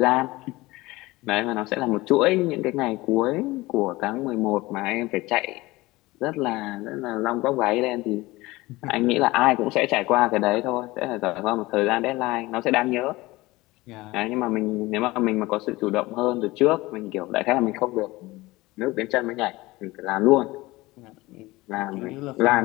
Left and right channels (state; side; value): quieter; right; 20.3 dB